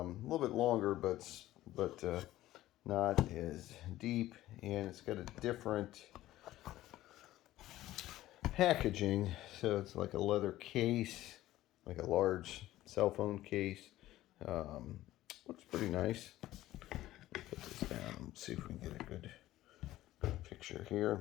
bit longer, but not as deep, and it's got a different packaging. So it's like a leather case, like a large cell phone case. Looks pretty nice. Put this down and see if we can get a good picture here.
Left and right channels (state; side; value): quieter; right; 15.1 dB